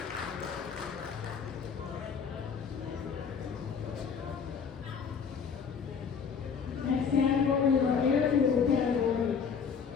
Next category is our air-cooled category.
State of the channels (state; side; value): quieter; right; 6.4 dB